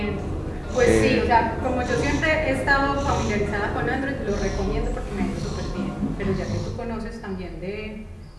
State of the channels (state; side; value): identical; both; correlation 1.00